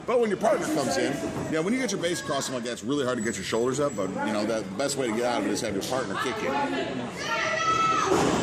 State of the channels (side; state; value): both; identical; correlation 1.00